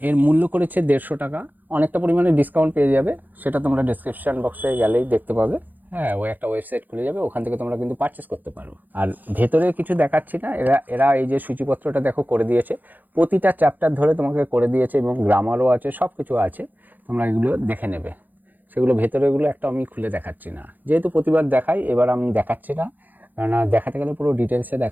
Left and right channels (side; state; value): left; late; 0.085 ms